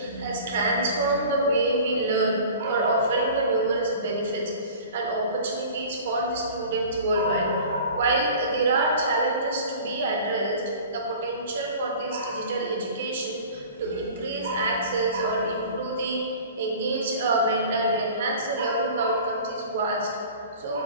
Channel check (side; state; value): both; inverted; correlation -0.42